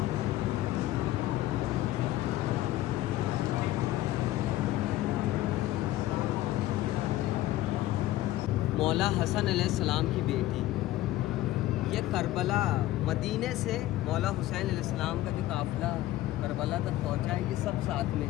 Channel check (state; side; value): quieter; right; 15.3 dB